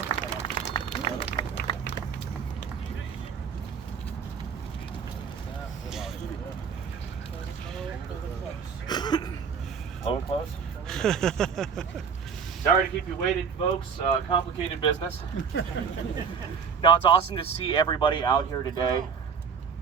Low and close. Sorry to keep you waiting, folks. Complicated business. No, it's awesome to see everybody out here today.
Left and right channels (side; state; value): left; quieter; 6.4 dB